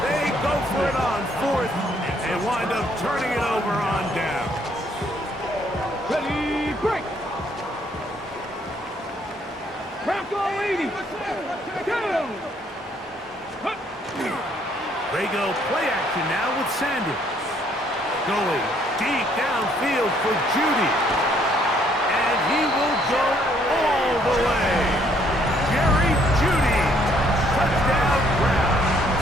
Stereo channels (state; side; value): normal; both; correlation 0.66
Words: They go for it on 4th and wind up turning it over on down. Ready, break! Bronco 80! Go! They go play action now with Sanders. Going deep downfield for Judy. And he will go all the way. Jerry Judy. Touchdown